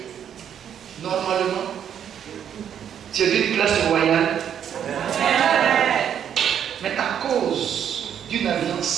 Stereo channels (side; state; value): left; quieter; 9.0 dB